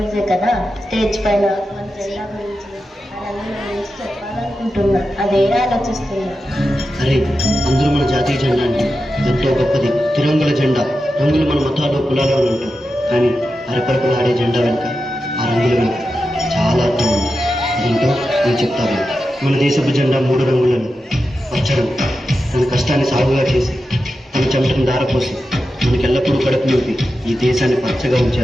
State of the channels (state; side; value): normal; both; correlation 0.90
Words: day కదా, stage పైన మన జెండా గురించి రంగుల గురించి చెప్పాలనుకుంటున్నా. అదే ఆలోచిస్తున్నా. అరే, అందరూ మన జాతీయ జెండా అంటే ఎంతో గొప్పది. తిరంగుల జెండా. రంగులు మన మతాలు కులాలు అని ఉంటారు, కానీ అరపరపులు ఆడే జెండా వెనుక, ఆ రంగుల వెనుక చాలా అర్థం ఉంది. అదేంటో నేను చెప్తాను. మన దేశపు జెండా 3 రంగులను. పచ్చడం తన కష్టాన్ని సాగుగా చేసి, తన చెమటను దారపోసి, మనకెల్లప్పుడూ కడుపు నింపి ఈ దేశాన్ని పచ్చగా ఉంచే